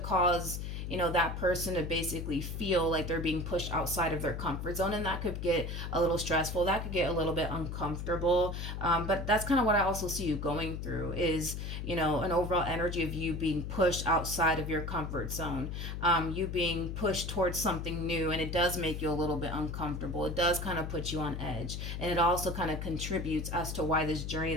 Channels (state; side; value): noise; left; hum, 5 dB below the sound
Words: cause, you know, that person to basically feel like they're being pushed outside of their comfort zone, and that could get a little stressful, that could get a little bit uncomfortable. But that's kind of what I also see you going through is, you know, an overall energy of you being pushed outside of your comfort zone, you being pushed towards something new, and it does make you a little bit uncomfortable. It does kind of put you on edge, and it also kind of contributes as to why this journey